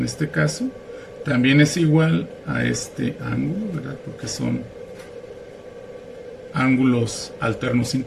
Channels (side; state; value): both; identical; correlation 1.00